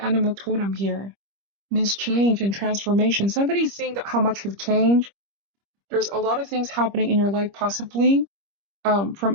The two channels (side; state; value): left; late; 25 ms